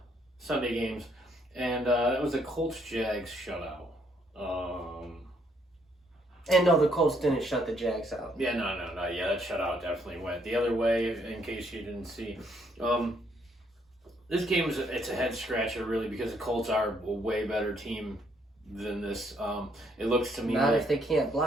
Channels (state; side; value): normal; both; correlation 0.70